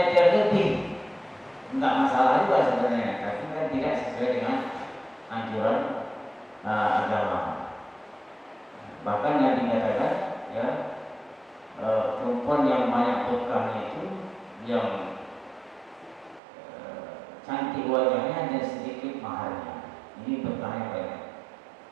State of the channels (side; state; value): left; drops out; at 16.4 s